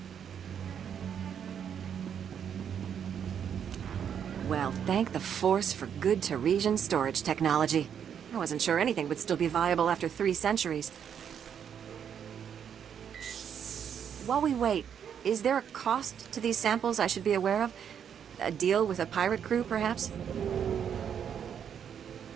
Well, thank the Force for good Teresian storage technology. I wasn't sure anything would still be viable after 3 centuries. While we wait, is there a cost to these samples I should be aware of? A deal with a pirate crew, perhaps?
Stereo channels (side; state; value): left; quieter; 8.3 dB